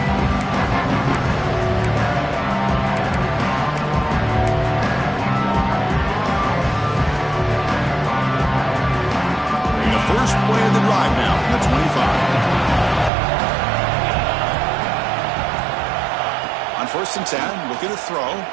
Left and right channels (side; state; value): left; drops out; at 13.1 s